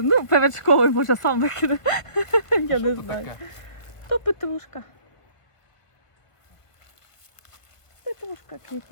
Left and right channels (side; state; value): right; late; 1.2 ms